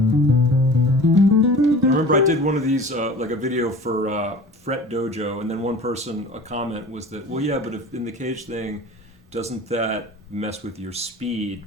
remember I did one of these, like a video for Fret Dojo, and then one person, a comment was that, well, yeah, but if in the cage thing, doesn't that mess with your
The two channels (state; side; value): normal; both; correlation 0.41